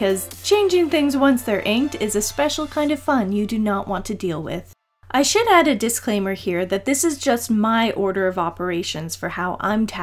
changing things once they're inked is a special kind of fun you do not want to deal with. I should add a disclaimer here that this is just my order of operations for how I'm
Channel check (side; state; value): both; identical; correlation 1.00